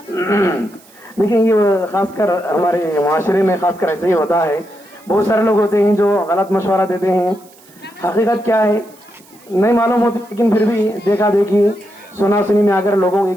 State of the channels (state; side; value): noise; right; hiss, 27 dB below the sound